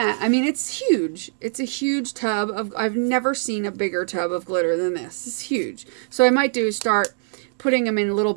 I mean, it's huge. It's a huge tub of, I've never seen a bigger tub of glitter than this. It's huge. So I might do is start putting them in little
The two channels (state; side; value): silent; left; 61 dB below the other